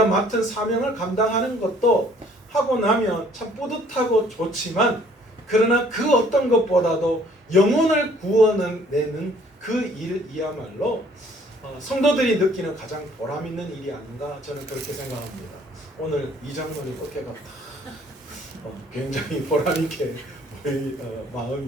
맡은 사명을 감당하는 것도 하고 나면 참 뿌듯하고 좋지만 그러나 그 어떤 것보다도 영혼을 구원내는 그 일이야말로 성도들이 느끼는 가장 보람 있는 일이 아닌가 저는 그렇게 생각합니다. 오늘 이 장로님 어깨가 굉장히 보람 있게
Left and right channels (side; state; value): both; normal; correlation 0.58